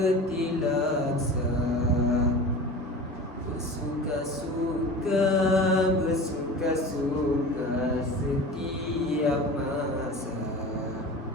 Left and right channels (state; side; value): normal; both; correlation 0.35